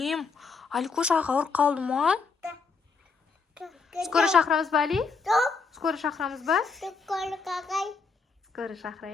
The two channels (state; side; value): quieter; right; 4.8 dB